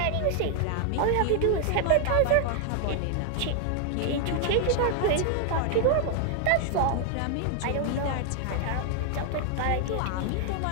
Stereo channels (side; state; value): both; different; correlation 0.00